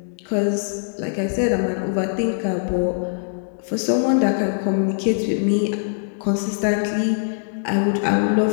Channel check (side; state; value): right; silent; digital silence